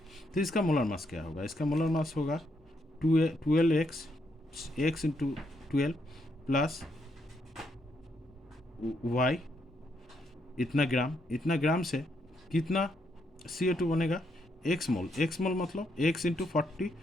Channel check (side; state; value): both; normal; correlation 0.77